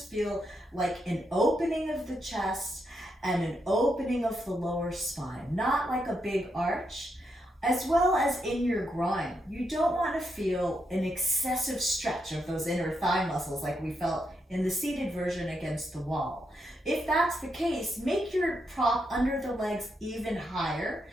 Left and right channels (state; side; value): normal; both; correlation 0.81